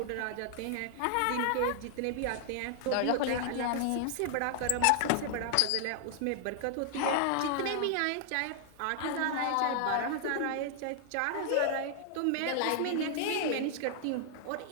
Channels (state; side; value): different; both; correlation 0.00